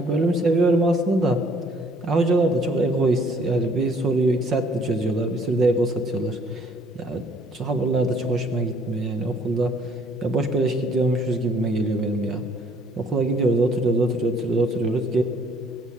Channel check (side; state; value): both; normal; correlation 0.61